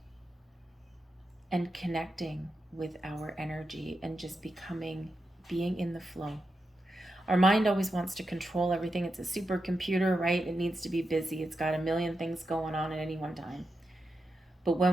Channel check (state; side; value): normal; both; correlation 0.88